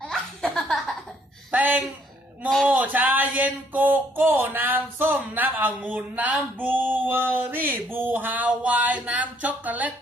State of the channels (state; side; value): normal; both; correlation 0.66